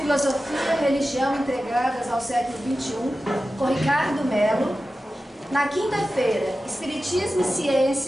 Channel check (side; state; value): both; normal; correlation 0.94